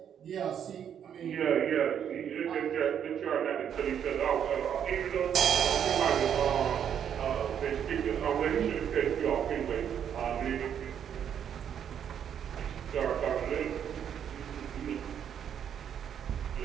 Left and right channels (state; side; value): quieter; left; 8.7 dB